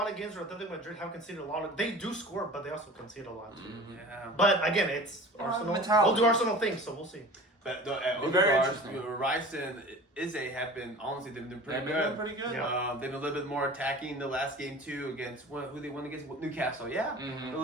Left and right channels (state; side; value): normal; both; correlation 0.40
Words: of games where Atletico Madrid have conceded a lot of. They do score, but they also concede a lot too. Yeah. But again, it's Arsenal. mentality. We'll do Arsenal things, so we'll see. But the Very Odegaard, interesting. Rice and Izzy have been, honestly, they've been pretty They've good. been pretty good. Yeah. They've been a little bit more attacking the last game too against who they won against Newcastle. Yeah, a